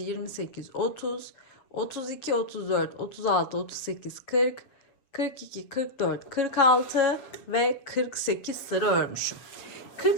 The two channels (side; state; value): right; late; 7.2 ms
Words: 30, 32, 34, 36, 38, 40, 42, 44, 46 ve 48 sıra örmüşüm.